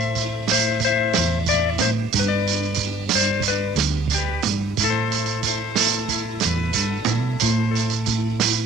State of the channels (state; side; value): normal; both; correlation 0.58